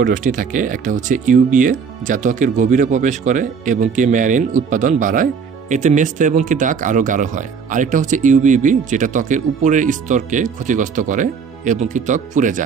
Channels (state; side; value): quieter; left; 6.0 dB